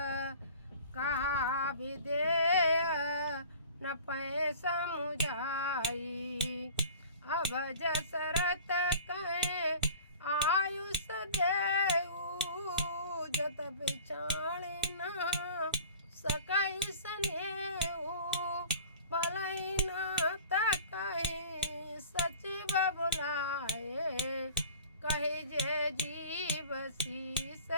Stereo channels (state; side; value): inverted; both; correlation -0.43